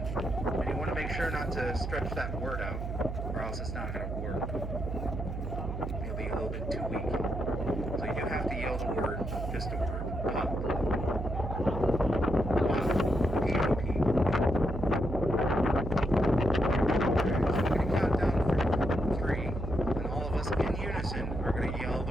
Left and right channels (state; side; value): noise; right; hum, 5 dB below the sound